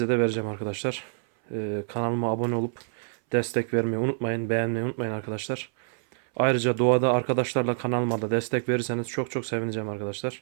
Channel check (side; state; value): left; silent; 60 dB below the other